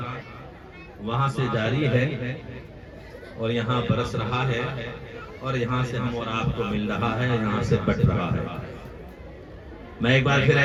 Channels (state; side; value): identical; both; correlation 1.00